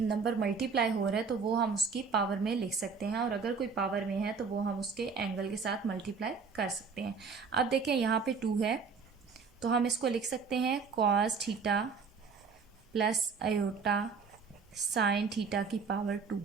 मल्टीप्लाई हो रहा है तो वो हम उसकी पावर में लिख सकते हैं, और अगर कोई पावर में है तो वो हम उसके एंगल के साथ मल्टीप्लाई कर सकते हैं। अब देखें यहाँ पे 2 है तो हम इसको लिख सकते हैं cos theta plus iota sine theta की पावर 2,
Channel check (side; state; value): left; quieter; 5.3 dB